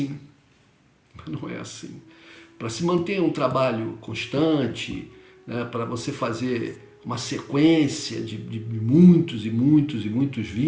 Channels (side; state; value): both; identical; correlation 1.00